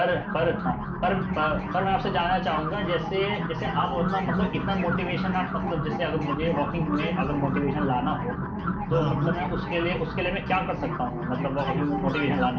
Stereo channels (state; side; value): identical; both; correlation 1.00